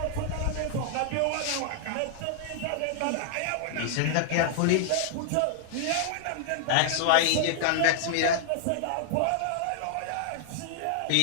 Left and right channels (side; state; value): both; different; correlation -0.01